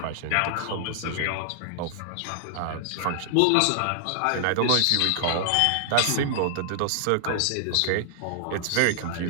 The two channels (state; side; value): different; both; correlation -0.01